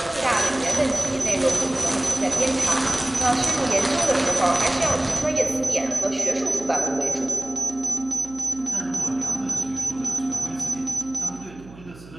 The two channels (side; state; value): right; noise; hum, 20 dB below the sound